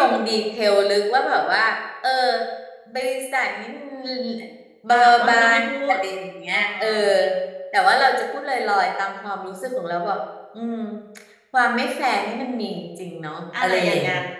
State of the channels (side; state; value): both; identical; correlation 1.00